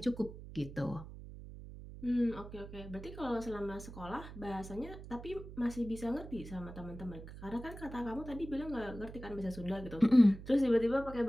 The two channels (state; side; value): noise; right; hum, 13 dB below the sound